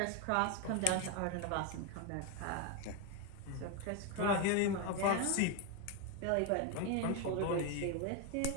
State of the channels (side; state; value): both; different; correlation 0.02